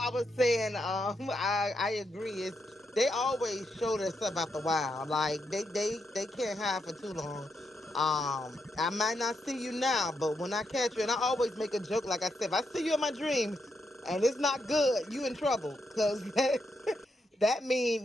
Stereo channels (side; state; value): both; normal; correlation 0.81